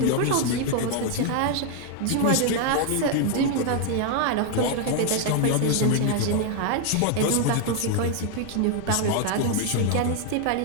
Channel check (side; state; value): both; different; correlation 0.00